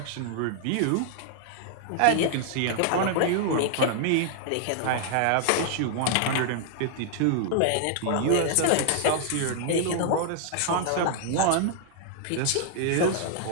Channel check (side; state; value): both; different; correlation 0.00